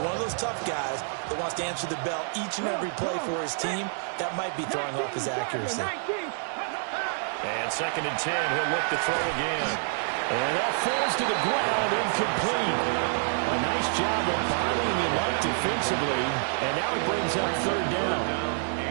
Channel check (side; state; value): left; silent; digital silence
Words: one of those tough guys that wants to answer the bell each and every play for his team. That might be throwing off his accuracy. And 2nd and 10, he'll look to throw again. And that falls to the ground, incomplete. A nice job of bottling him up defensively, and now it brings up 3rd down.